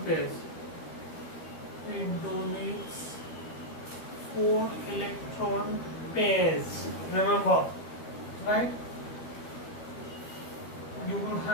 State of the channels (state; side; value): late; right; 12 ms